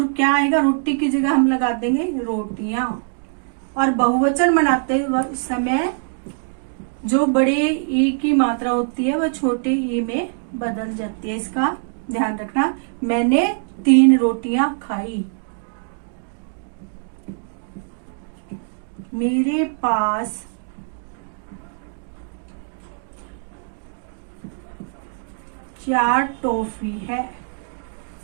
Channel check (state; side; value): silent; left; 64 dB below the other